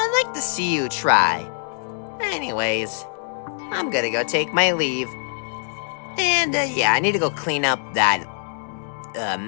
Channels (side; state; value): right; silent; digital silence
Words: like to see you try. Anyways, I'm gonna go take my leave. And, yeah, I need to go clean up that,